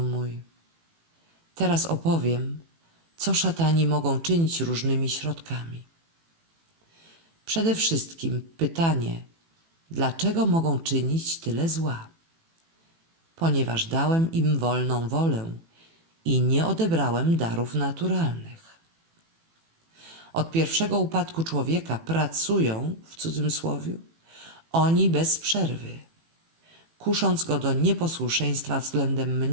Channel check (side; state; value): left; late; 18 ms